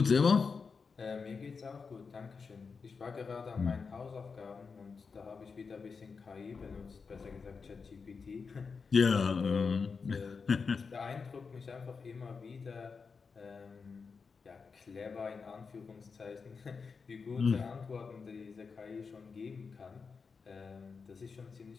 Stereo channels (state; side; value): quieter; right; 5.1 dB